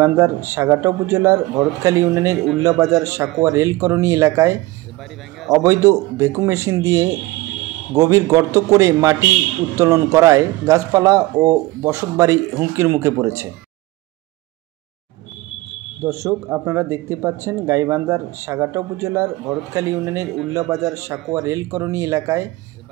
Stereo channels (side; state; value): left; quieter; 19.5 dB